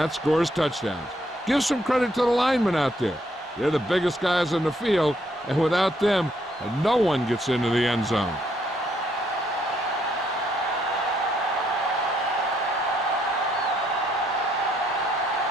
scores touchdowns. Give some credit to the linemen out there. They're the biggest guys on the field, and without them, no one gets into the end zone.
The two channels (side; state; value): both; normal; correlation 0.72